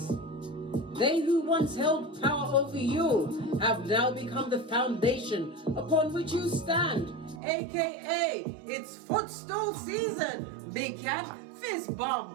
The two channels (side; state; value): left; drops out; at 7.4 s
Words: They who once held power over you have now become the foundation upon which you stand, aka it's footstool season. Big Cat, fist